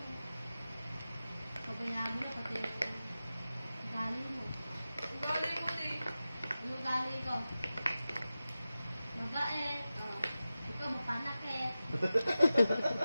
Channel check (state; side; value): inverted; both; correlation -0.94